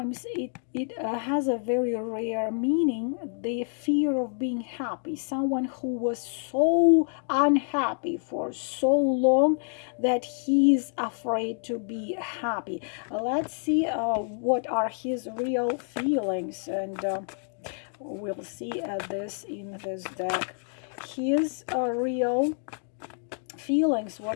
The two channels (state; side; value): silent; right; 55 dB below the other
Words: it has a very rare meaning, the fear of being happy, someone who was so unhappy for so long that he's afraid to be happy. Let's see what are his real feelings, and we'll see this in this deck. His real feelings,